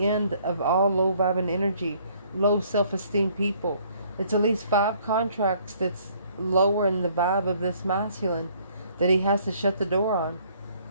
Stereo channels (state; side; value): inverted; both; correlation -0.62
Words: of all low vibing energy, low self-esteem people. It's at least 5 contracts that's lowering the vibe of this masculine that he has to shut the door on